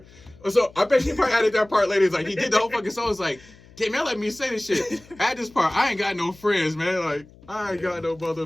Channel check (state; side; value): noise; left; hum, 24 dB below the sound